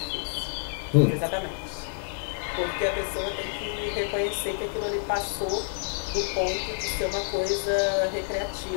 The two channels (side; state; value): right; silent; 59 dB below the other